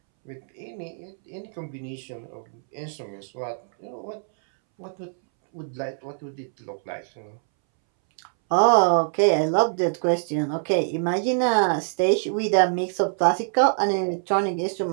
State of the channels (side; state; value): left; silent; 62 dB below the other